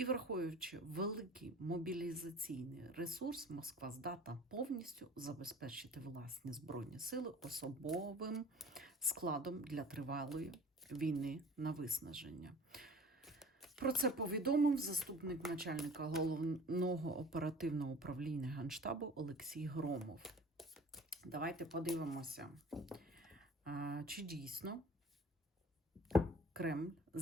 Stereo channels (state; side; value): normal; both; correlation 0.45